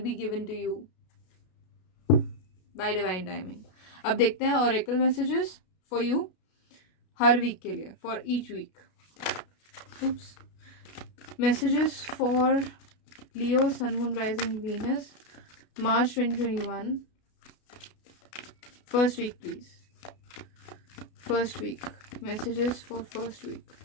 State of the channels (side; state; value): right; late; 33 ms